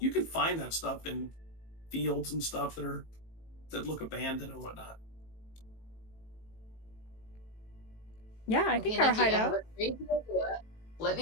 can find that stuff in fields and stuff that look abandoned and whatnot. Yeah, I Okay, think our Nikki, I have hideout. a crazy idea. Let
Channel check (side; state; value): right; late; 18 ms